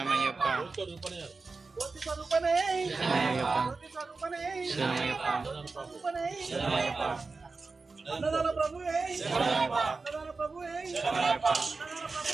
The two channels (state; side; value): quieter; left; 4.0 dB